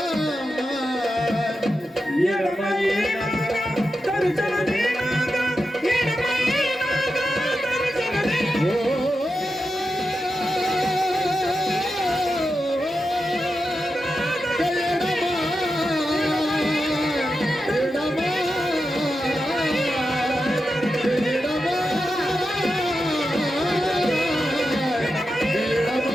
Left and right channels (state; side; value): normal; both; correlation 0.89